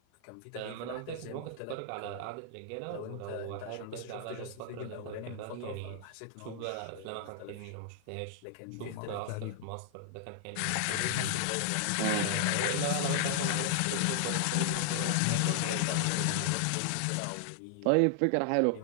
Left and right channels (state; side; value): different; both; correlation 0.00